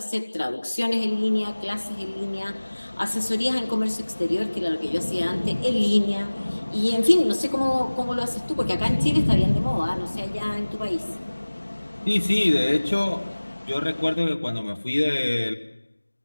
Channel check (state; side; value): inverted; both; correlation -1.00